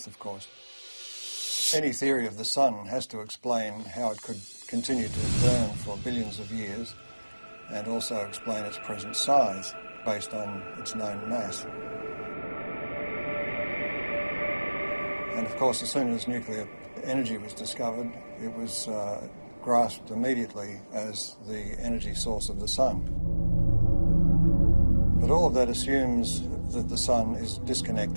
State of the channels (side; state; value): both; inverted; correlation -1.00